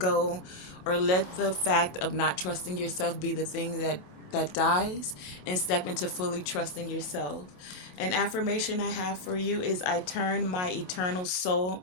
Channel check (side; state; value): right; late; 27 ms